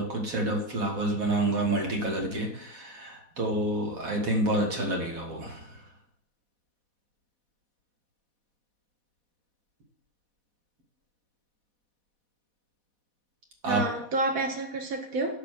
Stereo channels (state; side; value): late; left; 4.1 ms